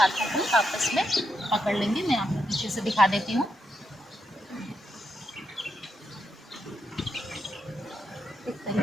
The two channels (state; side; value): normal; both; correlation 0.82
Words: को आपस में पकड़ लेंगे। मैं आपको पीछे से दिखा देती हूँ। इस